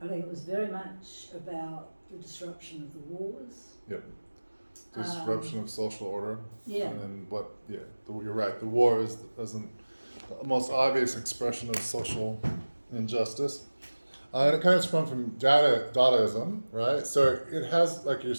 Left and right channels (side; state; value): both; inverted; correlation -1.00